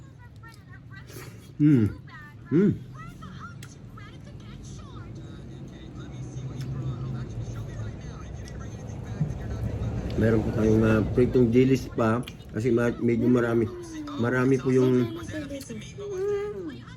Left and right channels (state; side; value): identical; both; correlation 1.00